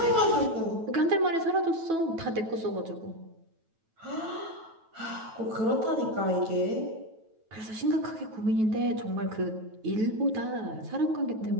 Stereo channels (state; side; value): late; left; 9.2 ms